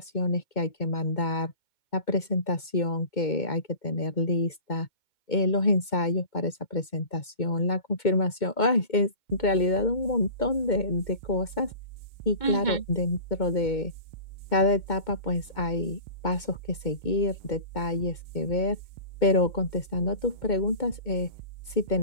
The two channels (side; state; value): right; late; 2.2 ms